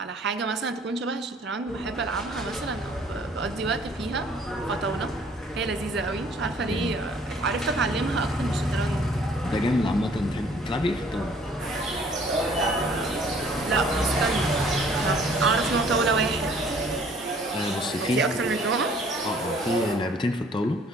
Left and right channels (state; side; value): normal; both; correlation 0.57